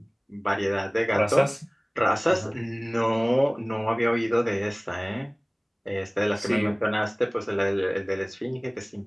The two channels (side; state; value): both; identical; correlation 1.00